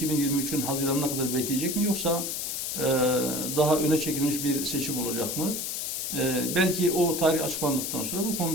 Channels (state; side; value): noise; left; hiss, 3 dB below the sound